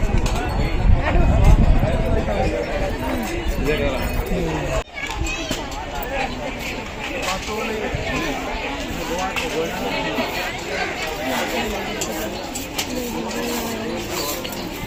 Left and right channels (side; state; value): both; identical; correlation 1.00